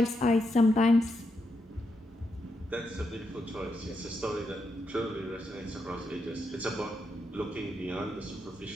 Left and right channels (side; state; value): both; normal; correlation 0.83